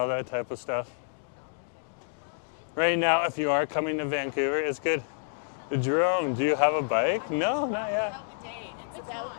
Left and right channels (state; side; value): silent; right; digital silence